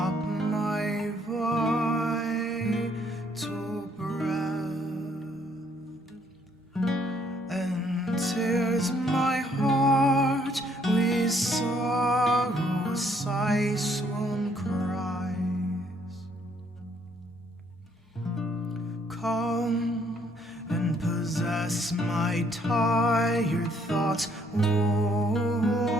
my vital breath, and tears my heart with sorrow, sighs, swoon cries. Come and possess my tired thoughts,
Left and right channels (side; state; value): both; normal; correlation 0.66